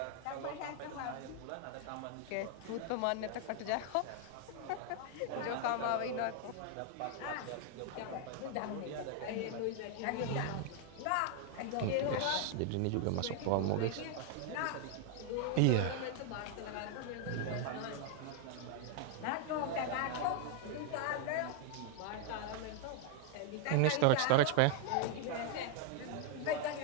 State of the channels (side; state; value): both; different; correlation 0.00